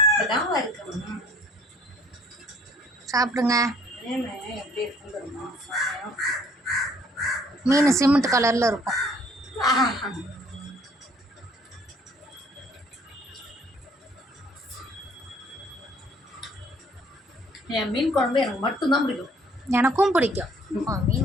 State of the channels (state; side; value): normal; both; correlation 0.58